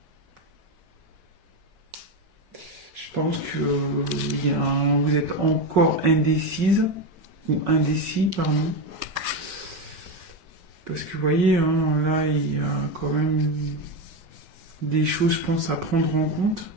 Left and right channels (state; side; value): late; left; 5.4 ms